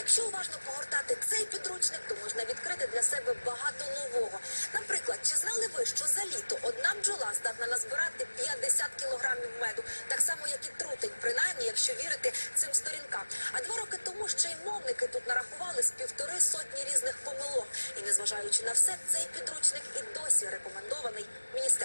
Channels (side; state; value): both; inverted; correlation -1.00